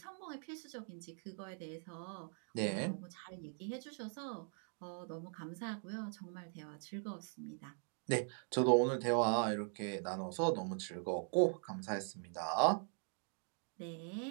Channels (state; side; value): silent; left; 50 dB below the other